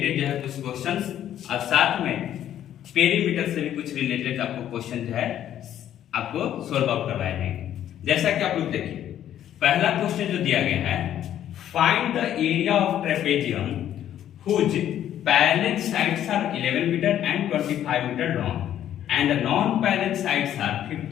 जो है कुछ क्वेश्चंस और साथ में पेरीमीटर से भी कुछ रिलेटेड आपको क्वेश्चन जो है आपको सोल्व आउट करवाए जाएंगे। जैसा कि आप लोग देखिए, पहला क्वेश्चन जो दिया गया है, find the area of trapezium whose parallel sides are 11 metre and 25 metre long and the non-parallel sides are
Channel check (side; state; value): right; quieter; 11.1 dB